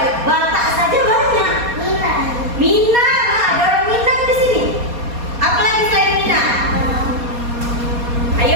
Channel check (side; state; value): left; late; 4.2 ms